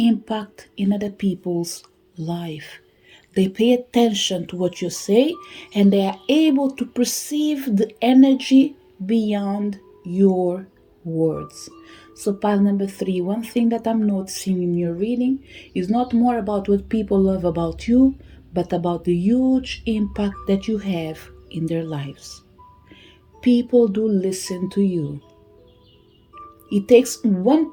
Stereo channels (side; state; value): both; identical; correlation 1.00